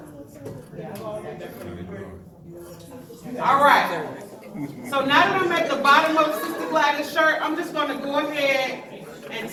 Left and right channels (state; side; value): identical; both; correlation 1.00